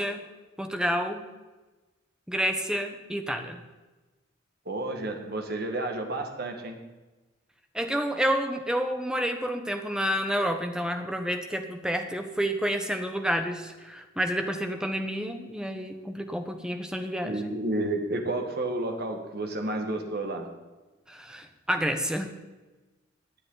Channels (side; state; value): both; normal; correlation 0.66